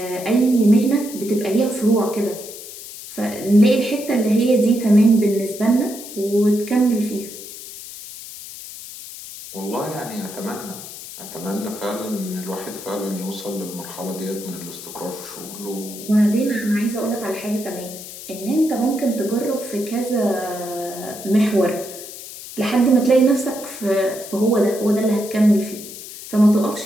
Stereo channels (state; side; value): noise; left; hiss, 13 dB below the sound